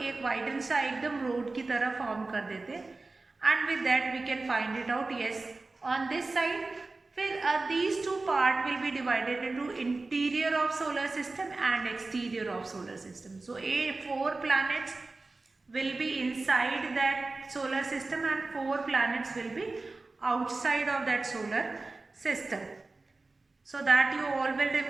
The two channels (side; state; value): left; quieter; 3.4 dB